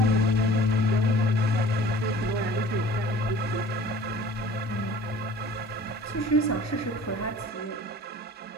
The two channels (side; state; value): both; normal; correlation 0.47